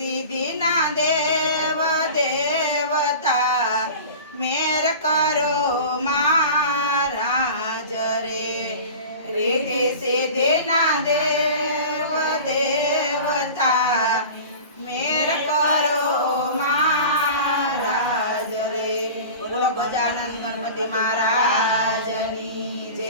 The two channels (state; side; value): inverted; both; correlation -0.37